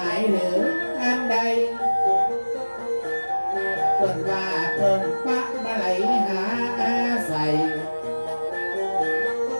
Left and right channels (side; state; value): both; inverted; correlation -1.00